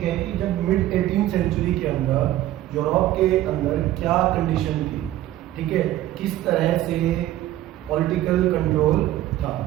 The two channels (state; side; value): quieter; left; 14.1 dB